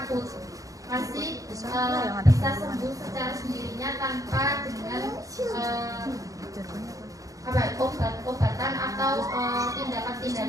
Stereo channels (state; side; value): late; left; 0.17 ms